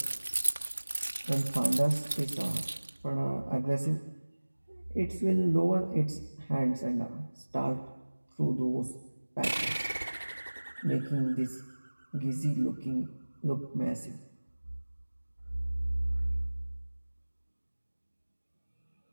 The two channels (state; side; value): inverted; both; correlation -1.00